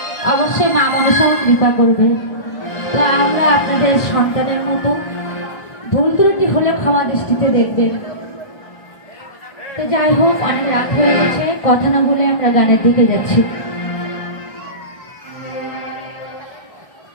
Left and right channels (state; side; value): late; right; 1.5 ms